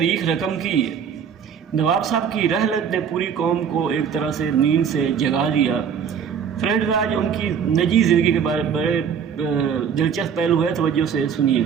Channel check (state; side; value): quieter; left; 7.4 dB